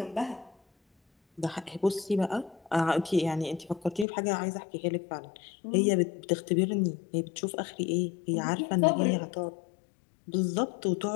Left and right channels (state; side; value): drops out; right; at 4.0 s